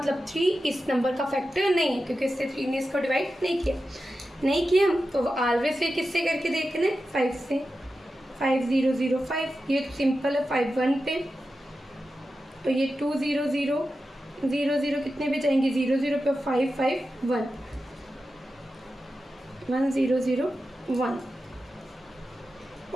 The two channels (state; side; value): normal; both; correlation 0.91